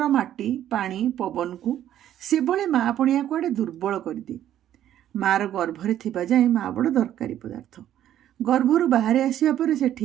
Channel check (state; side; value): quieter; left; 11.5 dB